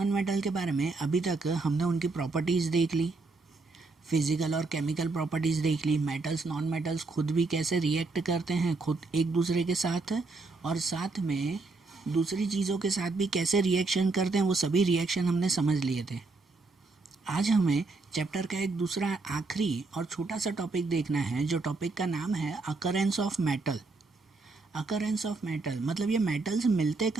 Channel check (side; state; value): left; quieter; 3.7 dB